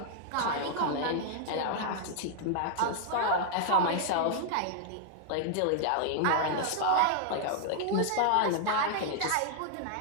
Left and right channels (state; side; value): different; both; correlation 0.00